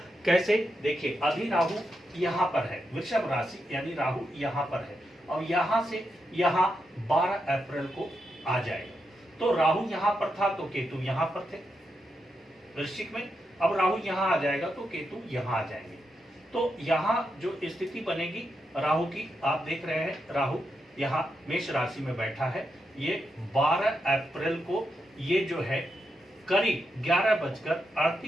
कैसे। देखिए, अभी राहु यहाँ पर है, वृषभ राशि यानी राहु यहाँ पर है और यहाँ से यहाँ 12 अप्रैल को आ जाएगा। तो राहु यहाँ पर था तो केतु यहाँ पर थे वृश्चिक में, अब राहु यहाँ आ जाएगा तो केतु यहाँ आ जाएंगे। तो यहाँ जो स्थिति बनेगी राहु की, आप देख रहे हैं राहु यहाँ मेष राशि में बैठा है। ये 12 अप्रैल को ये जो है करीब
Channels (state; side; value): normal; both; correlation 0.85